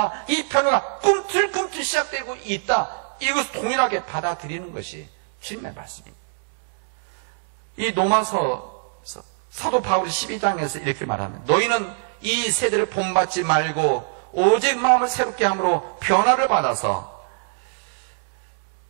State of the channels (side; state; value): left; silent; 63 dB below the other